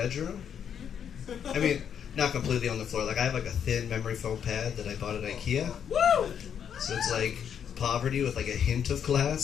I mean, not completely on the floor. Like, I have like a thin memory foam pad that I bought at IKEA. Woo! So it's like poverty with like a hint of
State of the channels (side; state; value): right; quieter; 8.3 dB